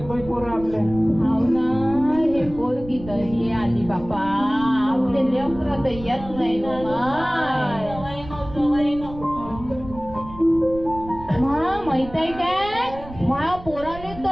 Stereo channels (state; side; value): noise; right; rumble, 15 dB below the sound